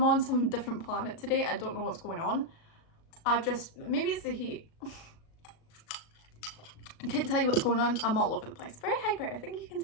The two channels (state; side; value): late; right; 37 ms